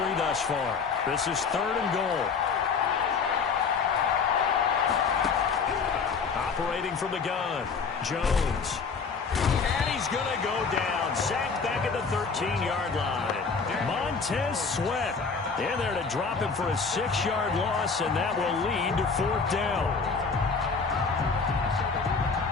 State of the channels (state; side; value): quieter; right; 5.2 dB